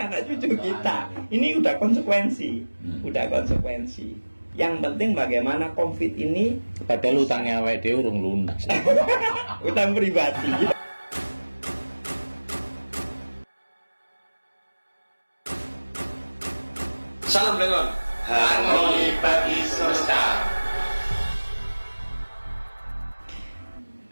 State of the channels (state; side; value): inverted; both; correlation -1.00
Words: cucu kita. Ini udah konsekuensi. Yang penting bagaimana COVID ini. Padahal hutangnya awake dhewe urung lunas. Hutang pribadi. Salam dengan harmoni bagi semesta.